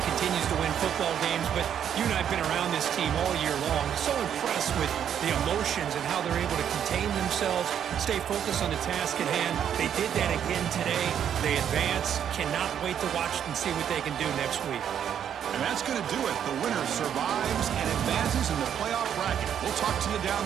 to win football games, but you and I have been around this team all year long. So impressed with the emotions and how they're able to contain themselves, stay focused on the task at hand. They did that again today. They advance. Cannot wait to watch and see what they can do next week. And that's going to do it. The winner survives and advances in the playoff bracket. We'll talk to you down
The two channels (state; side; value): quieter; left; 9.0 dB